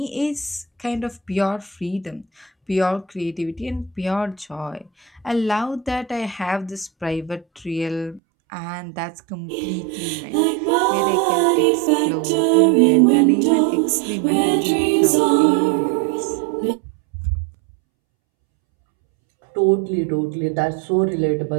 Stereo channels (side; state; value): left; drops out; at 8.2 s